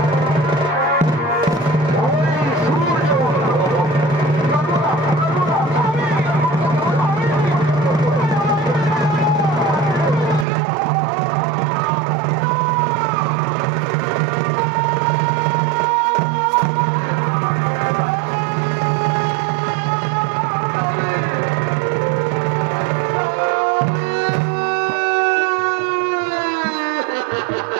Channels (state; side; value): drops out; left; at 10.5 s